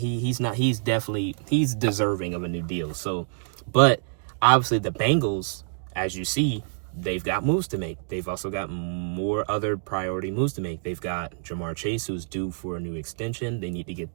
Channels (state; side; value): silent; left; digital silence